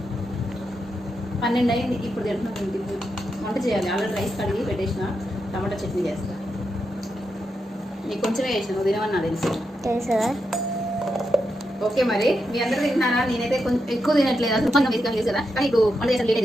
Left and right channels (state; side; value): normal; both; correlation 0.85